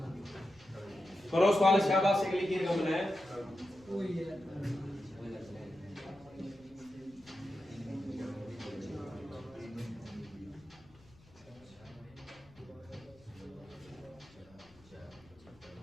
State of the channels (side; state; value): left; noise; rumble, 26 dB below the sound